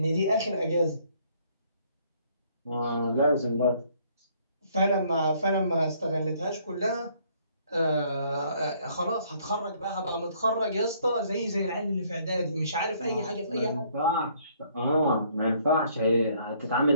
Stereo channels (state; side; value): inverted; both; correlation -0.64